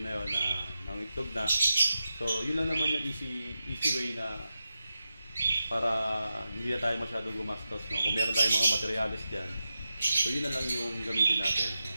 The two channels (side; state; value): both; inverted; correlation -0.90